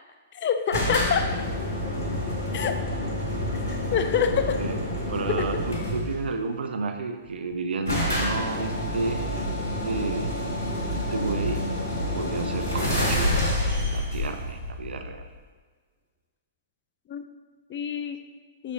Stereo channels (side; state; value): both; inverted; correlation -0.37